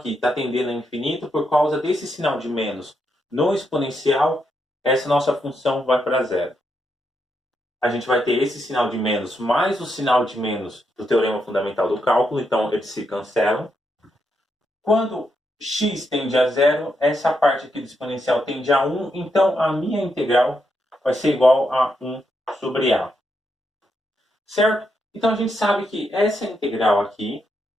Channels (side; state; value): both; normal; correlation 0.81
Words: está tendendo a infinito por causa desse sinal de menos no exponencial, essa nossa função vai para zero. A gente vai ter esse sinal de menos mais o sinal de menos do teorema fundamental do cálculo, então eles se cancelam. Quando x tende a zero, essa parte aqui do exponencial tende a 1, então a minha integral vai ser igual a 1 sobre a. Certo? Então a gente sabe que essa integral aqui